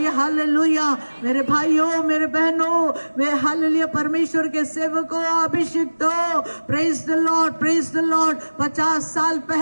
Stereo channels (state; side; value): inverted; both; correlation -1.00